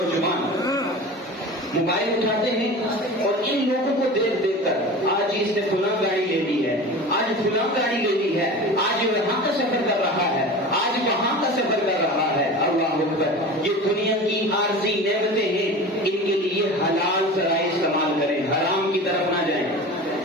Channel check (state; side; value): normal; both; correlation 0.34